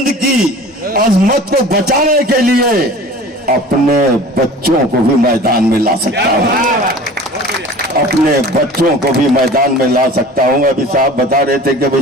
की अजमत को बचाने के लिए अपने बच्चों को भी मैदान में ला सकता हूँ। अपने बच्चों को भी मैदान में ला सकता हूँ। अभी साहब बता रहे थे कि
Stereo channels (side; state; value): both; normal; correlation 0.42